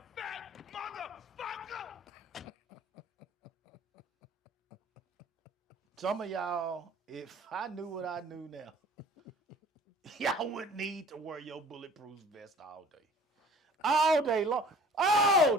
fat motherfucker. Some of y'all, if I knew what I knew now, y'all wouldn't need to wear your bulletproof vest all day. All day long. Oh,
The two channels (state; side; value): normal; both; correlation 0.49